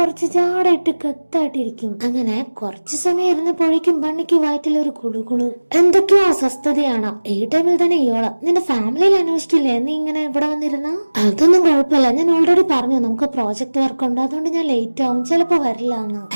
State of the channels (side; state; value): both; inverted; correlation -1.00